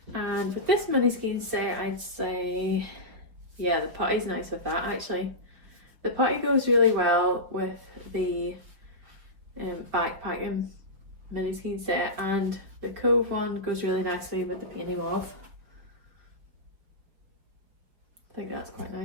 And with this mini skein set, I'd say, yeah, the putty's nice with that actually. The putty goes really well with the backpacking mini skein set, and the Cove one goes really nicely with the Peony Mauve. I think that's quite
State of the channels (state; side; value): late; left; 5.1 ms